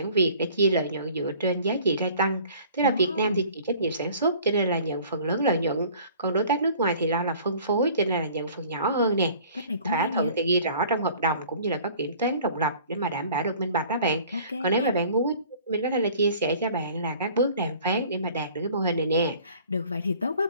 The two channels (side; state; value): both; inverted; correlation -0.50